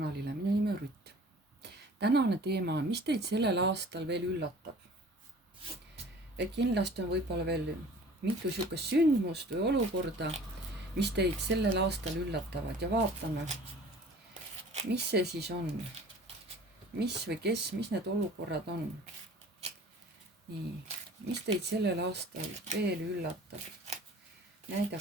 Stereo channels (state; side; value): normal; both; correlation 0.47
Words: minu nimi on Rutt. Tänane teema on, mis teid sellel aastal veel üllatab? Et kindlasti on võib-olla veel mitu sihukest sündmust või olukorda, mis teid sellel aastal üllatavad ja vaatame, mis see siis on. Mis või kes, mis need olukorrad on. Nii, mis teid sellel aastal veel üllatab?